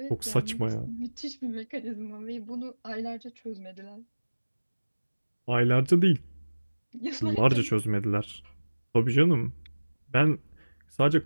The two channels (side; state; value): both; inverted; correlation -1.00